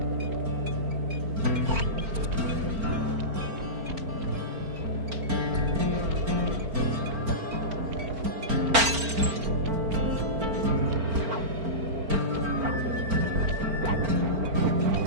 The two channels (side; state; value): left; late; 4.4 ms